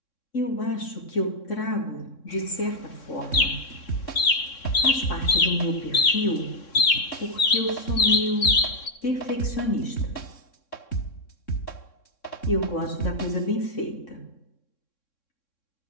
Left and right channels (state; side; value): late; right; 3.6 ms